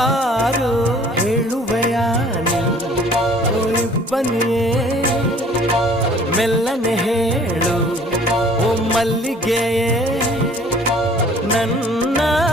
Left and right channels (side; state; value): both; normal; correlation 0.53